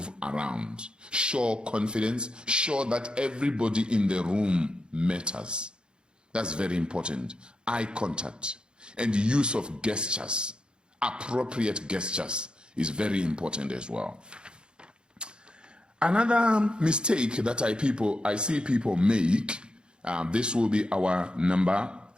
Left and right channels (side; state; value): left; late; 0.051 ms